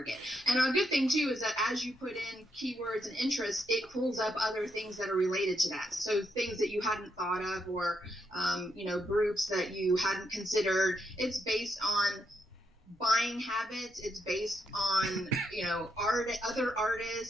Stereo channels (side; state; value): both; normal; correlation 0.80